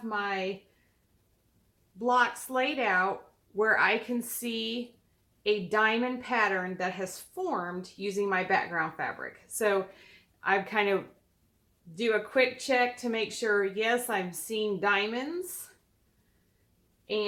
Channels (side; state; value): both; identical; correlation 1.00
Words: my blocks laid out where I can see a diamond pattern that has formed using my background fabric. So I kind of do a quick check to make sure, yes, I'm seeing diamonds